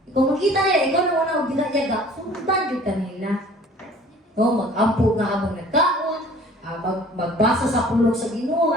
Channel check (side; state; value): both; normal; correlation 0.50